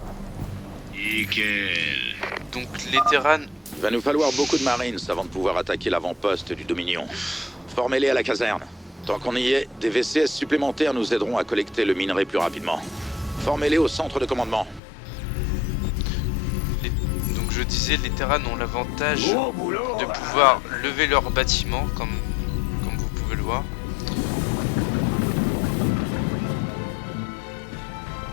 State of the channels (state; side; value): drops out; right; at 14.8 s